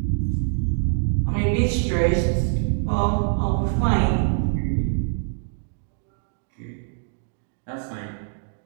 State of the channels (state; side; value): silent; left; 59 dB below the other